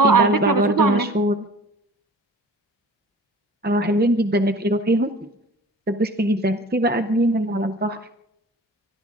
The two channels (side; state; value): both; normal; correlation 0.44